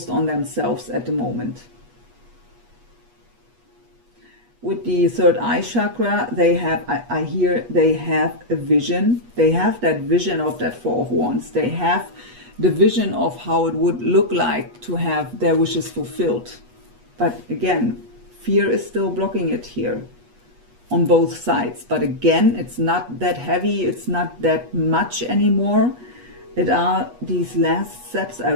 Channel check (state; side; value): late; left; 8.3 ms